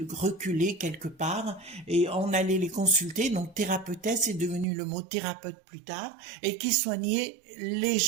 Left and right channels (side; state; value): left; drops out; at 4.7 s